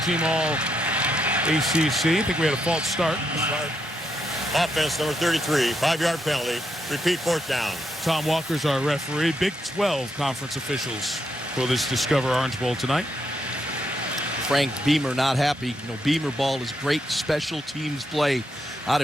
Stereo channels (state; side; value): normal; both; correlation 0.79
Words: All-ACC. I think we had a false start. Offense number 33, 5-yard penalty. Repeat 4th down. Tom Walker's our referee. Big 12 conference officials for this Discover Orange Bowl tonight. Frank Beamer not happy. You know, Beamer ball is great special teams play. Out